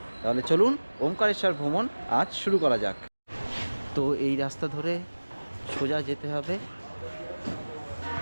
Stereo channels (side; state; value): both; inverted; correlation -1.00